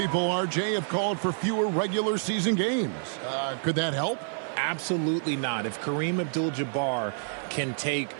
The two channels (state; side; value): silent; left; 56 dB below the other